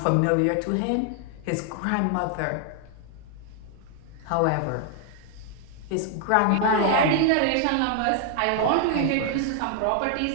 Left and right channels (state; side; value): different; both; correlation 0.00